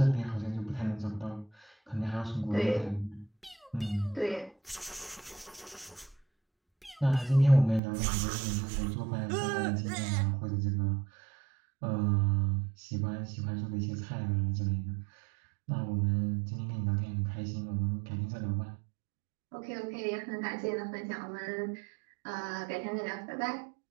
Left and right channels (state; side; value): drops out; left; at 7.8 s